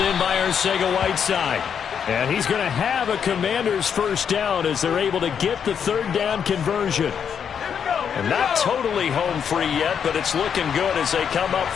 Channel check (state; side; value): quieter; right; 7.6 dB